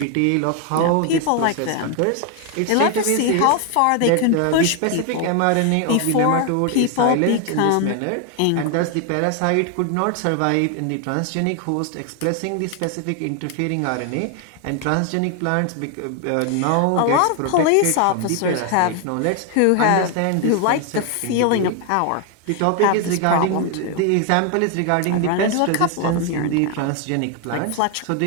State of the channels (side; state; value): both; different; correlation 0.01